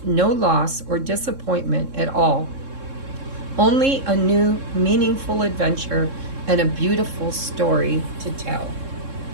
no loss or disappointment at all. Only a new, meaningful adventure and a beautiful story to tell.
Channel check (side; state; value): left; late; 3.7 ms